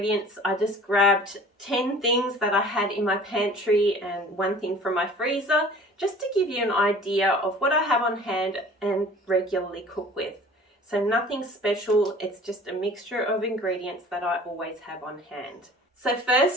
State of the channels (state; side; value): normal; both; correlation 0.47